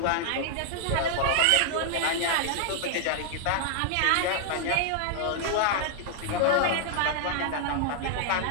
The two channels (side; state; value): both; different; correlation 0.00